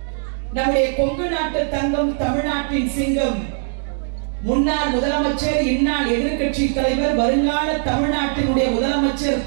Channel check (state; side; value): silent; left; digital silence